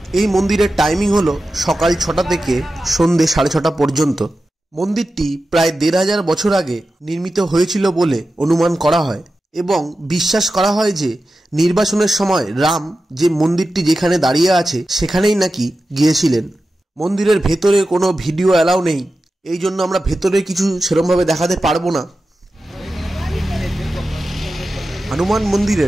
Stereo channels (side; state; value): both; normal; correlation 0.93